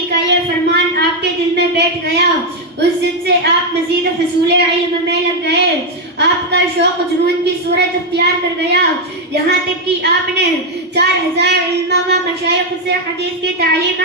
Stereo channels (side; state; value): both; normal; correlation 0.02